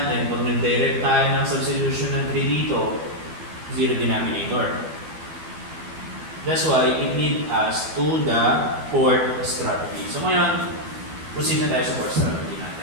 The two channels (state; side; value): late; left; 12 ms